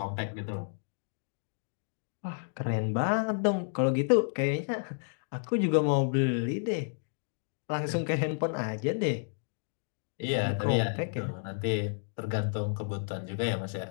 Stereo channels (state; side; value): silent; right; digital silence